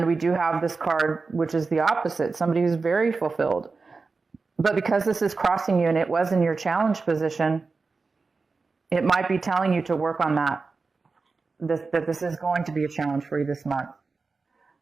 we do have this card, which is the opposite, somebody who's very fulfilled. But because this is crossing you and it was in your challenge position, it might be telling you to work on that. That this is going to be a challenge for you this month.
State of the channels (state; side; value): quieter; left; 4.2 dB